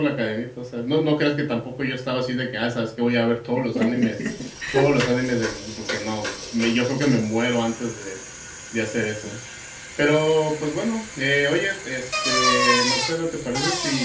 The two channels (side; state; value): both; identical; correlation 1.00